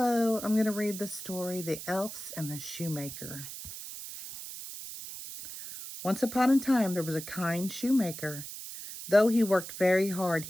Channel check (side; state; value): right; noise; hiss, 10 dB below the sound